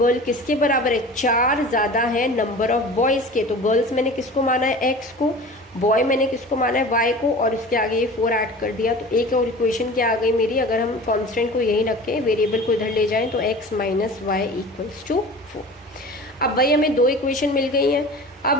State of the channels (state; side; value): normal; both; correlation 0.38